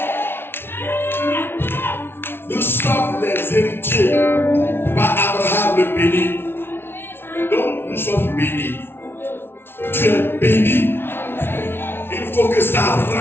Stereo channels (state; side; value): late; right; 0.11 ms